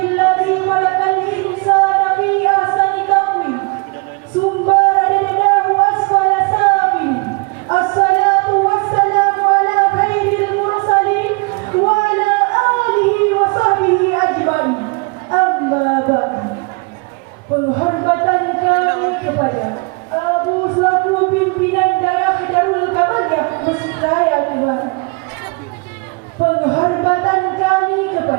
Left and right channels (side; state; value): left; quieter; 29.6 dB